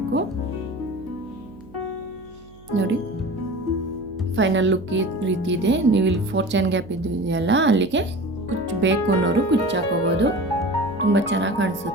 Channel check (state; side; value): noise; right; hum, 24 dB below the sound